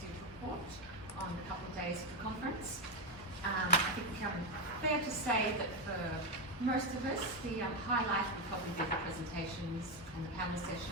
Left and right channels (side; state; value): both; normal; correlation 0.08